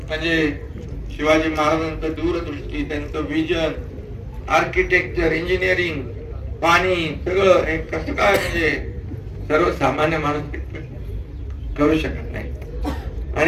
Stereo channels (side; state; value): both; identical; correlation 1.00